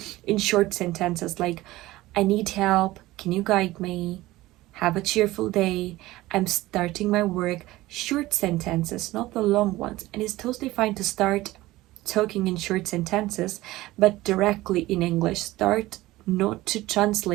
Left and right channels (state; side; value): quieter; left; 17.9 dB